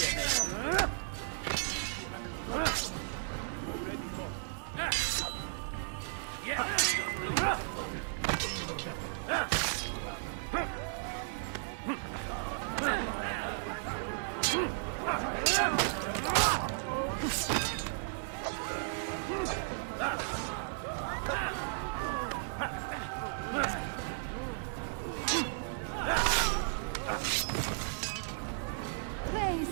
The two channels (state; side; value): silent; left; digital silence